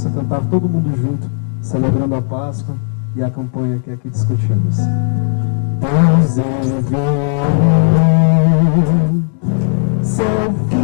cantar todo mundo junto, celebrando a Páscoa e a campanha que aqui discutimos. Pois ele veio, seu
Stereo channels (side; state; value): right; silent; 70 dB below the other